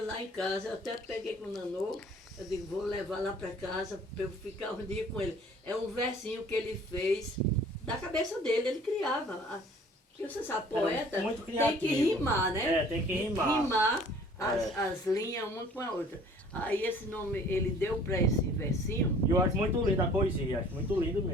lá em casa, eu até peguei com o Nanô, eu digo, vou levar lá para casa para eu ficar um dia com ele. É um versinho que ele fez da cabeça dele, ele criava. Porque você sabe, poeta muito tem que criativo. rimar, né? É, tem que rimar. Rimar as linhas uma com a outra. Aí esse nome ele deu para esse versinho. E eu acho muito linda a poesia, acho muito lindo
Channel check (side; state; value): both; normal; correlation 0.52